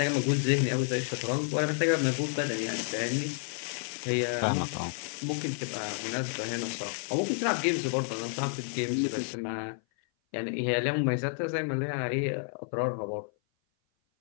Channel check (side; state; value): right; silent; 56 dB below the other